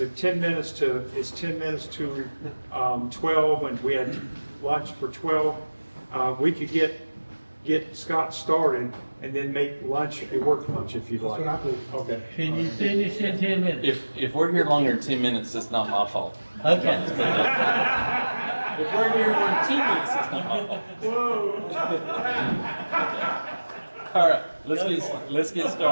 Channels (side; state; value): both; inverted; correlation -1.00